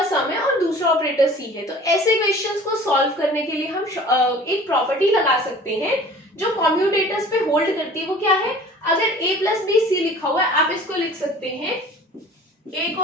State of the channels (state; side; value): normal; both; correlation 0.45